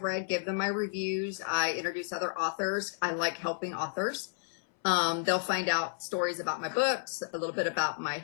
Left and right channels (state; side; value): silent; right; 57 dB below the other